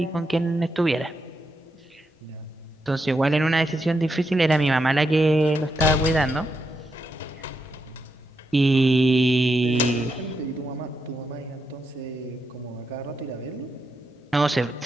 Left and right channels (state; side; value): normal; both; correlation 0.83